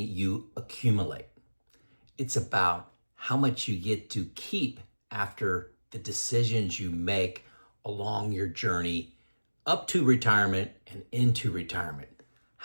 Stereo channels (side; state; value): both; inverted; correlation -1.00